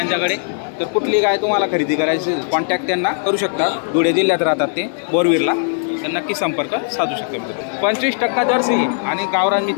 तर कुठली गाय तुम्हाला खरेदी करायची कॉन्टॅक्ट त्यांना करू शकता. धुळे जिल्ह्यात राहतात ते, बोरवीरला. तर नक्की संपर्क साधू शकता. 25% जर्सी आहे आणि गावरान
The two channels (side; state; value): right; silent; digital silence